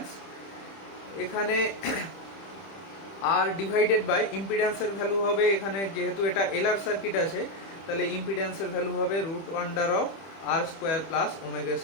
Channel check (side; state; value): right; late; 30 ms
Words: এখানে আর ডিভাইডেড বাই ইম্পিডেন্সের ভ্যালু হবে, এখানে যেহেতু এটা এলআর সার্কিট আছে তাহলে ইম্পিডেন্সের ভ্যালু হবে √1/r² প্লাস ω²